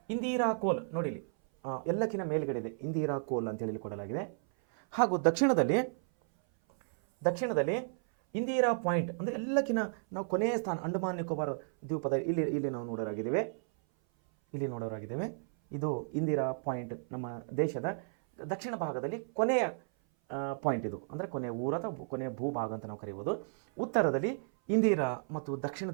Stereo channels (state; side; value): silent; left; 56 dB below the other